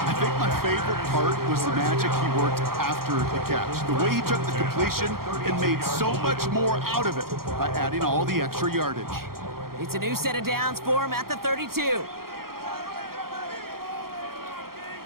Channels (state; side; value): late; left; 0.93 ms